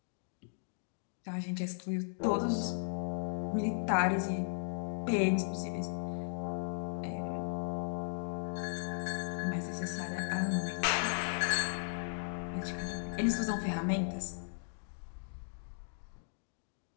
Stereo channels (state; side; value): silent; right; digital silence